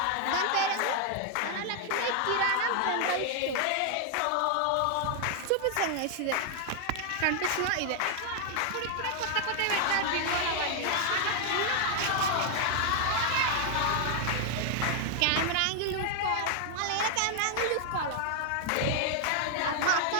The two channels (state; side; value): different; both; correlation 0.00